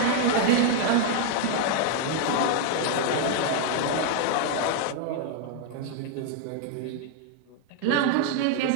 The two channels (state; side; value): different; both; correlation 0.00